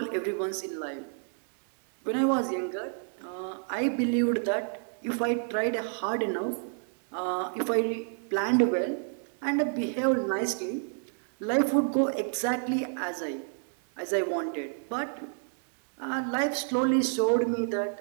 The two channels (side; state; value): left; silent; 58 dB below the other